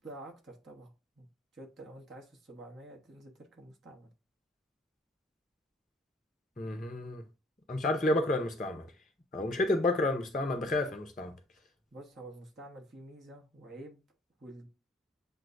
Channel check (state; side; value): normal; both; correlation 0.58